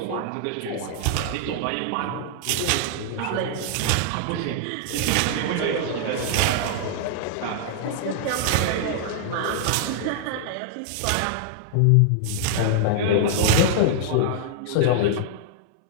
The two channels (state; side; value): different; both; correlation -0.01